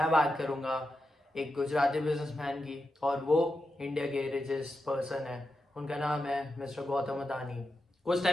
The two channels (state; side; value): normal; both; correlation 0.88